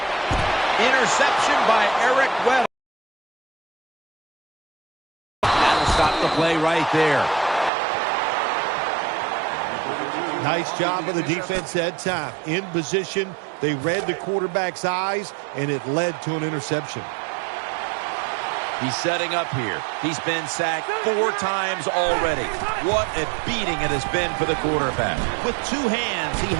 Interception by Eric Weddle. That'll stop the play right there. Nice job by the defense that time. In position, they read the quarterback's eyes, and it led to an interception. He's setting up here. He's been sacked 4 times already. What a beating it has been for the quarterback. With 2 hands, he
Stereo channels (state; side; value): drops out; left; at 7.7 s